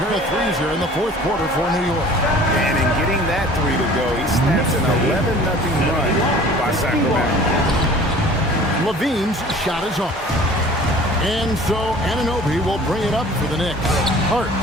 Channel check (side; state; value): both; normal; correlation 0.47